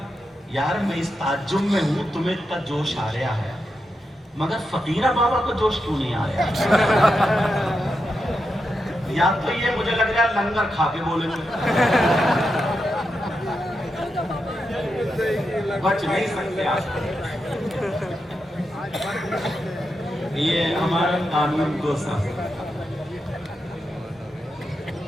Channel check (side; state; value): both; normal; correlation 0.86